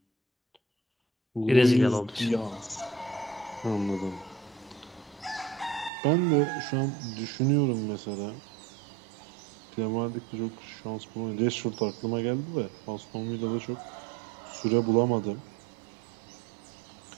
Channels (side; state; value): left; drops out; at 5.9 s